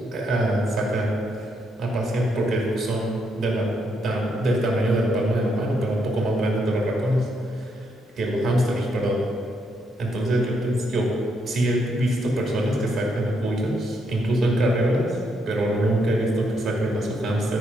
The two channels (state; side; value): normal; both; correlation 0.77